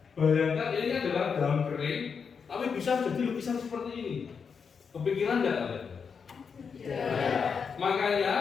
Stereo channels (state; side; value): quieter; right; 6.1 dB